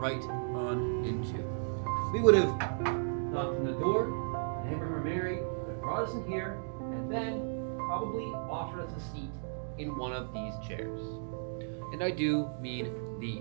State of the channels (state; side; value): silent; left; digital silence